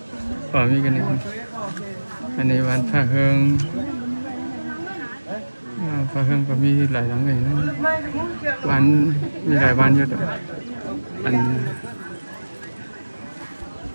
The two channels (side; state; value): both; inverted; correlation -1.00